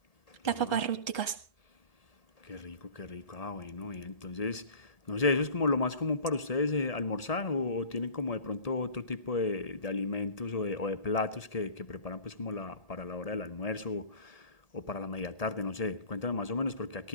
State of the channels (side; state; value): right; late; 1.8 ms